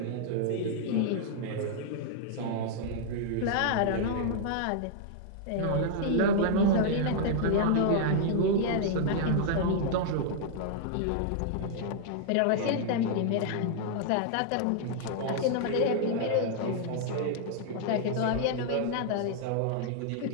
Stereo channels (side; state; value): both; different; correlation -0.01